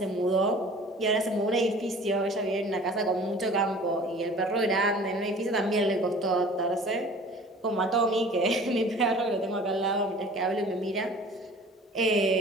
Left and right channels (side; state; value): both; normal; correlation 0.46